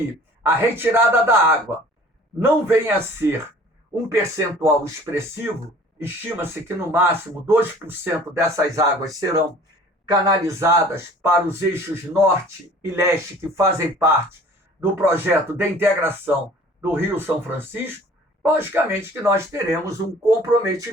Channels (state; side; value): normal; both; correlation 0.49